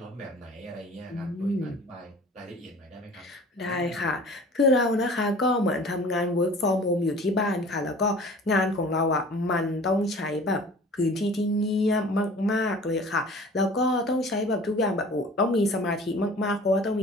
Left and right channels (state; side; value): normal; both; correlation 0.45